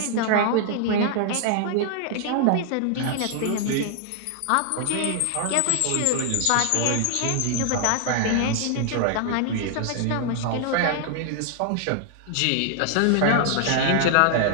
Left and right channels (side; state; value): both; different; correlation 0.00